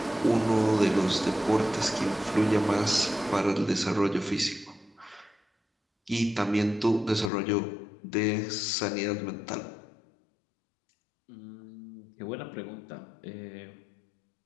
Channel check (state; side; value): drops out; right; at 7.3 s